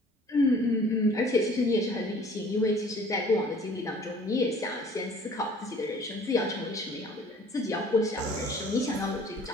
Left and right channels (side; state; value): both; normal; correlation 0.52